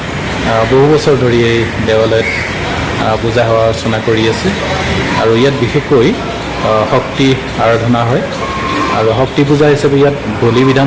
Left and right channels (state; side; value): identical; both; correlation 1.00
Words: বহু বছৰ ধৰি এই দেৱালয়ত পূজা সেৱা অৰ্চনা কৰি আছে আৰু ইয়াত বিশেষকৈ শক্তি আৰাধনা হয় আৰু শক্তি পূজা হিচাপে ইয়াত বলি